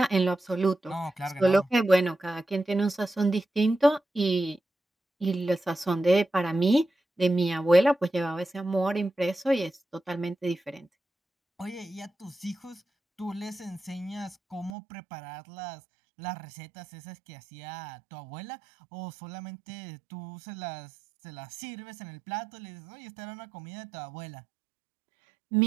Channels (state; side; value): drops out; left; at 14.7 s